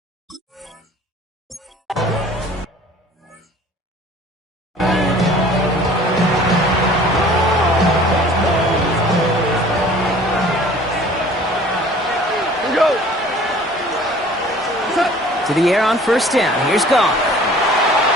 To the air on first down. Here's Goff.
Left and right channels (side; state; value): both; normal; correlation 0.49